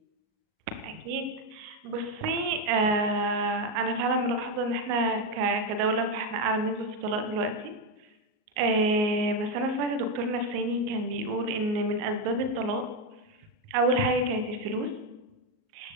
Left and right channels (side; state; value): left; late; 38 ms